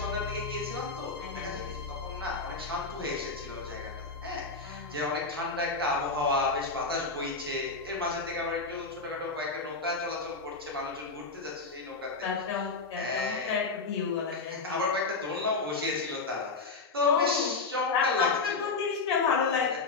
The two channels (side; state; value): right; quieter; 4.1 dB